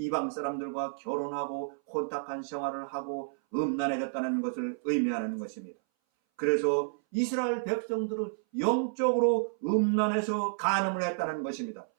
사람들과 결혼하고 혼탁한 생활을 하고 음란해졌다는 것을 의미하는 것입니다. 그래서 이스라엘 백성들은 영적으로 음란해서 간음을 했다는 것입니다.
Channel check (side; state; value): left; silent; 57 dB below the other